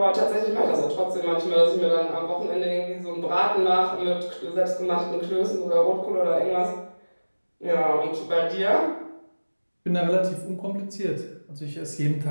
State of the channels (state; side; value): inverted; both; correlation -1.00